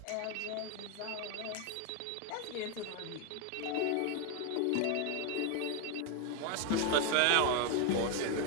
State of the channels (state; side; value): different; both; correlation 0.01